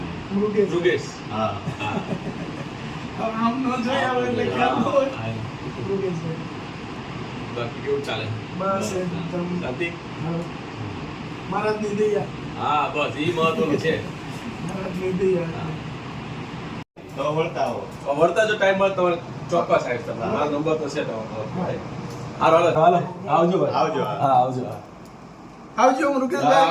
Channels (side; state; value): both; identical; correlation 1.00